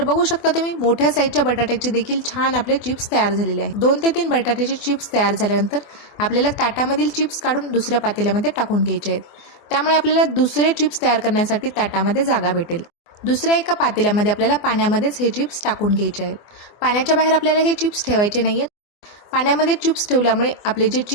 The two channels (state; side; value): late; right; 24 ms